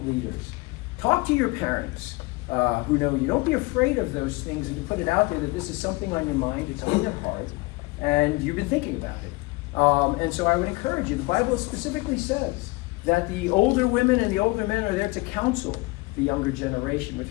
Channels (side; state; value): right; quieter; 23.8 dB